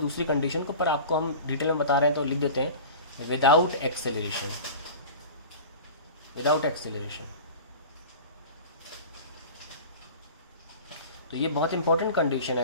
कंडीशन को, पर आपको हम डिटेल में बता रहे हैं तो लिख देते हैं, विदाउट एक्सेलरेशन, विदाउट एक्सेलरेशन। तो ये बहुत इंपॉर्टेंट कंडीशन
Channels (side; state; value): both; inverted; correlation -0.36